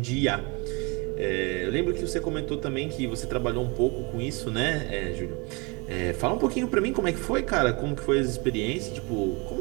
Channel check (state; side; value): quieter; left; 29.3 dB